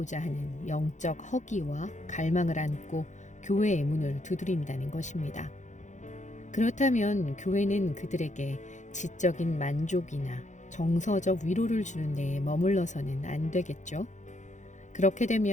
하는 영적 허기와 갈망을 안고 교회의 문을 두드린다는 것입니다. 그렇다면 교회는 그들에게 지적인 만족이나 정서적 위로를 주는 데에 머물러서는 안 되겠죠? 그렇게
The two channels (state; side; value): late; right; 0.35 ms